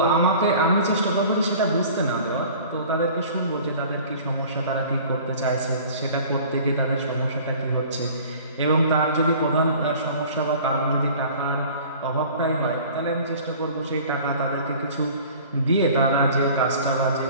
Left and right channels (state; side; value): inverted; both; correlation -0.46